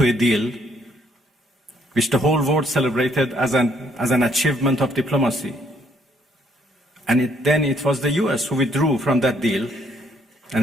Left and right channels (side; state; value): both; normal; correlation 0.68